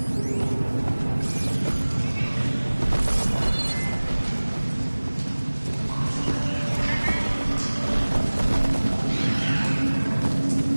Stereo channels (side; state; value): both; inverted; correlation -1.00